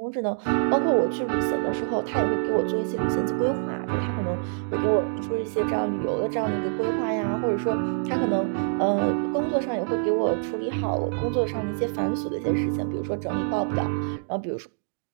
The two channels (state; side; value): silent; left; digital silence